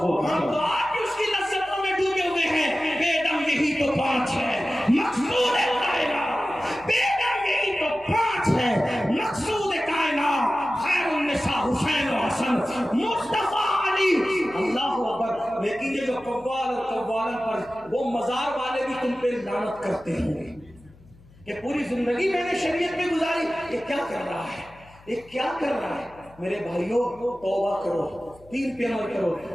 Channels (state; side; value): noise; left; hum, 26 dB below the sound